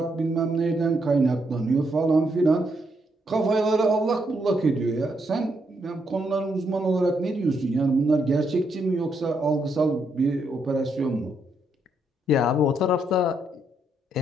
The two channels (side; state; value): both; normal; correlation 0.77